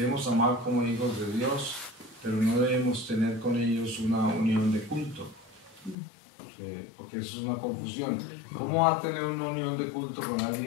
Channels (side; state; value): right; drops out; at 6.0 s